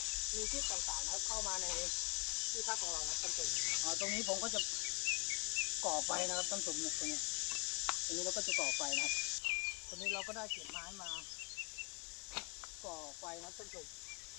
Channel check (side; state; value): right; quieter; 30.4 dB